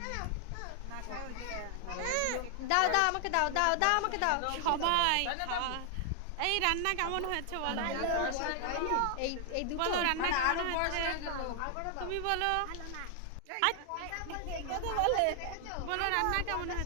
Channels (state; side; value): different; both; correlation 0.00